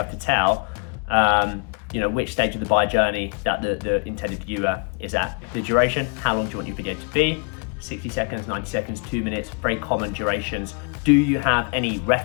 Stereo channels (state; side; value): quieter; right; 38.1 dB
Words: to tell which stage of the buyer journey that the intended viewer is at. The duration, how long do you want your video to be? 60 seconds, 90 seconds, 2 minutes, very common durations. Do you have any